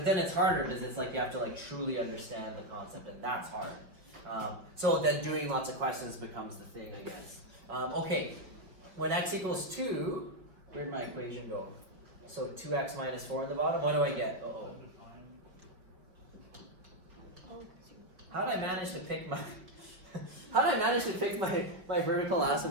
then it's harder because it's like you have to like truly understand the concept, and that's hard. So then doing lots of questions becomes the thing, I guess. Okay, when x equals 2, where'd my equation go? So 2x minus 4 in the bottom. What do I get? Uh-oh. How did I manage to pick my... How did I manage to pick my vertical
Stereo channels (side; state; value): left; late; 5.1 ms